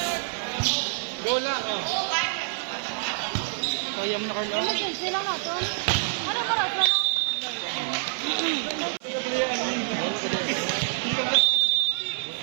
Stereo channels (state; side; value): silent; left; 60 dB below the other